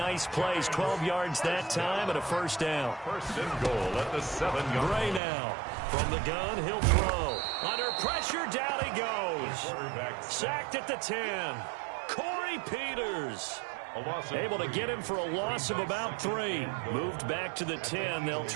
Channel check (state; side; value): drops out; left; at 5.2 s